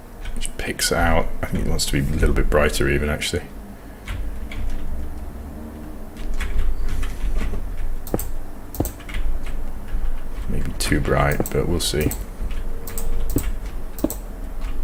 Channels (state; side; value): identical; both; correlation 1.00